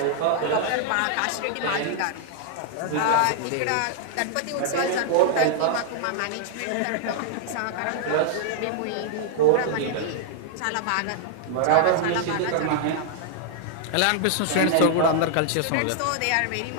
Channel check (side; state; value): both; different; correlation -0.01